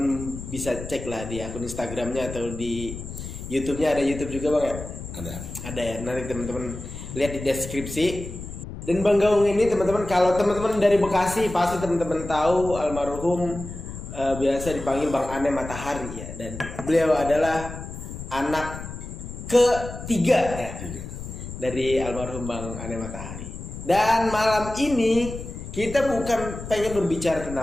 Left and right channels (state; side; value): noise; left; rumble, 10 dB below the sound